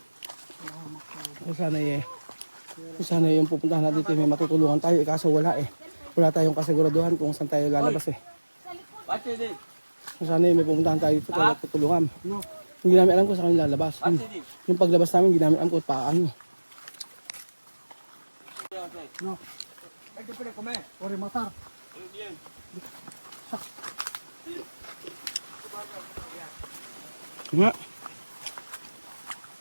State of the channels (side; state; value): both; inverted; correlation -1.00